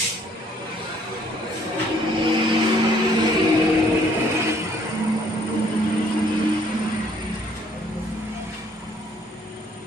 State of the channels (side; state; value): both; normal; correlation 0.63